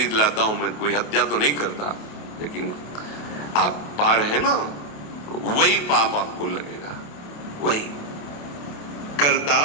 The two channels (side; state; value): right; late; 28 ms